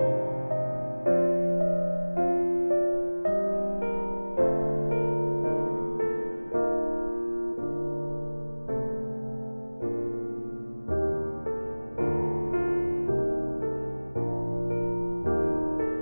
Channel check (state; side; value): inverted; both; correlation -1.00